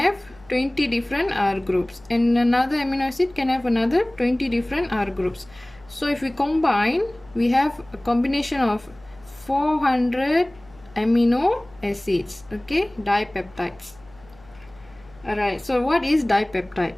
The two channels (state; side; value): noise; left; hum, 26 dB below the sound